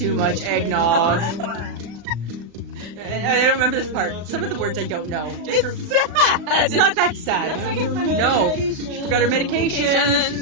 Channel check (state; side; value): late; left; 36 ms